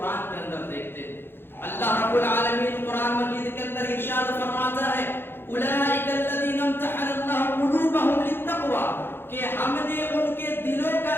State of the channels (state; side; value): late; right; 0.10 ms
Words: کے اندر دیکھتے ہیں. اللہ رب العالمین قرآن مجید کے اندر ارشاد فرماتا ہے اولئک الذین امتحن اللہ قلوبہم للتقوی، کہ ہم نے ان کے دلوں کا